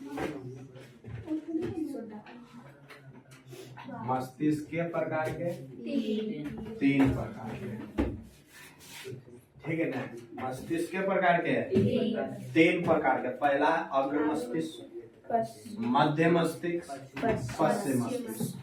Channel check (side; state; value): both; identical; correlation 1.00